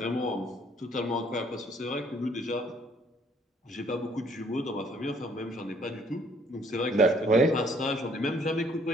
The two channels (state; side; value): normal; both; correlation 0.63